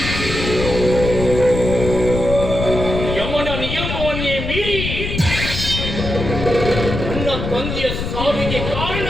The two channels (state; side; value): noise; left; rumble, 4 dB below the sound